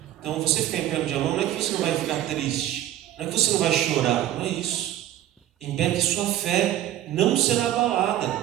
Então, você ficar em pé no dia mal, não é que você não vai ficar triste, não é que você não vai chorar, não é isso. Em pé que sua fé não será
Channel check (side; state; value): left; quieter; 12.9 dB